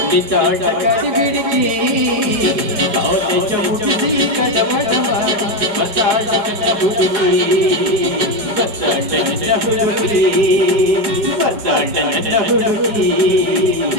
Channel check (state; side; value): late; left; 4.8 ms